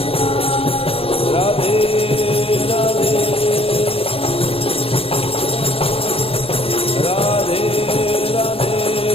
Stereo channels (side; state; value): right; late; 0.27 ms